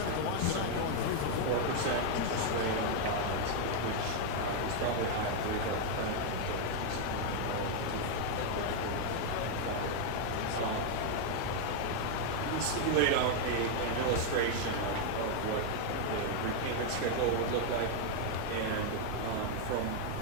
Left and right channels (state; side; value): different; both; correlation 0.00